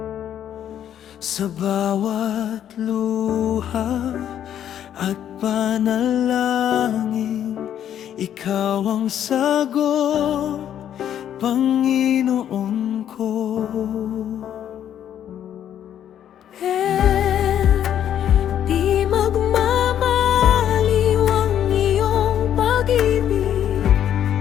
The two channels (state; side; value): quieter; right; 10.2 dB